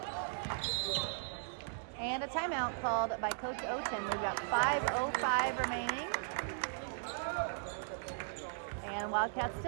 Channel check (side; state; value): left; silent; digital silence